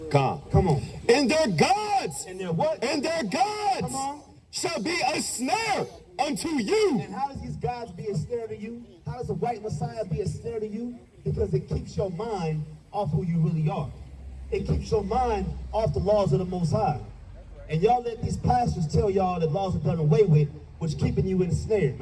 Come on. And their gods. And their what? And their gods. Come on. Shall be a snare unto you. And how does these gods be a snare to you? How does the white Messiah be a snare to you? Because it keeps your mind off who you really are. It keeps your mind off the laws of the Most High. And y'all let these pastors tell y'all that laws are done away with, which keeping you ensnared,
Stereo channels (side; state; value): both; identical; correlation 1.00